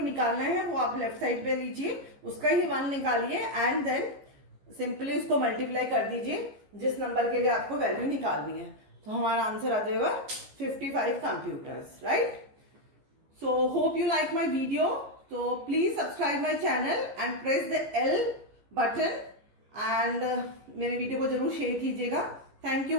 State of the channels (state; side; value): late; left; 15 ms